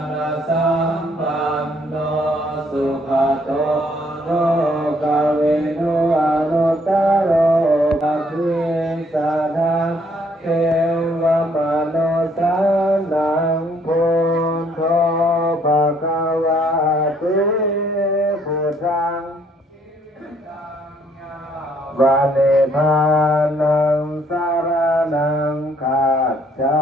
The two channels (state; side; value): normal; both; correlation 0.66